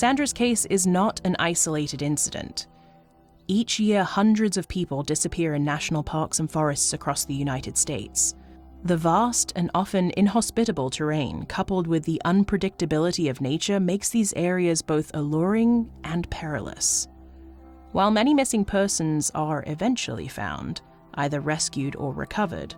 case is not an isolated incident. Each year, hundreds of people disappear in national parks and forests across the United States. The vast and often inhospitable terrain, coupled with the unpredictability of nature, makes these areas both alluring and perilous. While many missing persons are eventually found, either rescued or recovered,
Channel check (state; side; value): identical; both; correlation 1.00